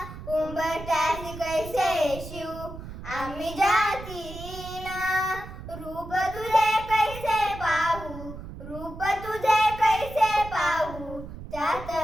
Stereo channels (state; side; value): noise; right; rumble, 12 dB below the sound